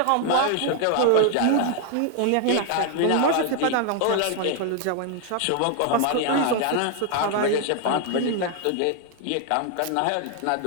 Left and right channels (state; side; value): different; both; correlation 0.00